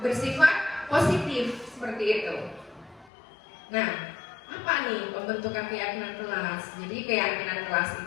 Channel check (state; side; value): drops out; right; at 3.1 s